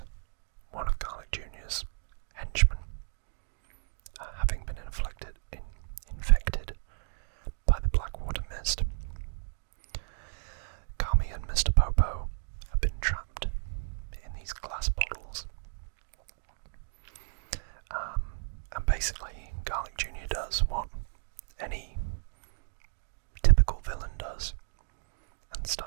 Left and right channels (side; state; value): left; silent; digital silence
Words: one of Garlic Jr.'s henchmen, having been infected by the Blackwater Mist. Kami and Mr. Popo have been trapped in these glass bottles. And basically, Garlic Jr. does what any typical villain does, and